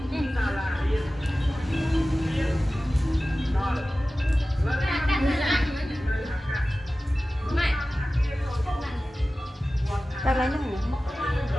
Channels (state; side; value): normal; both; correlation 0.96